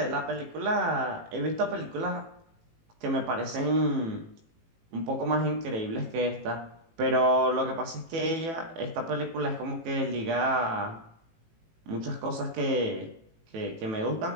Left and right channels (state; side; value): late; left; 18 ms